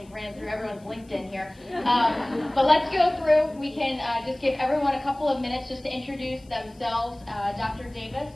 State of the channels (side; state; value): left; noise; hiss, 30 dB below the sound